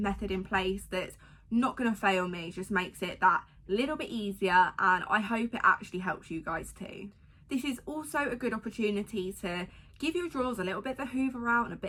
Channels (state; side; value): identical; both; correlation 1.00